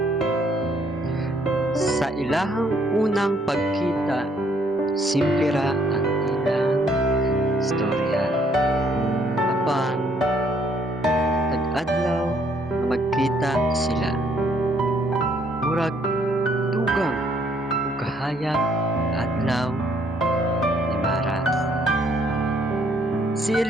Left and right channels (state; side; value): normal; both; correlation 0.67